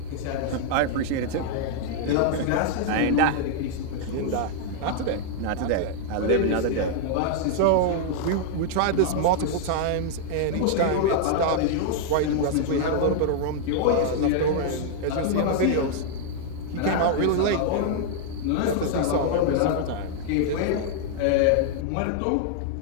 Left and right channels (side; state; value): both; different; correlation 0.00